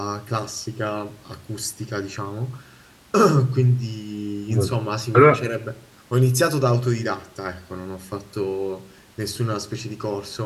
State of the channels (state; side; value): identical; both; correlation 1.00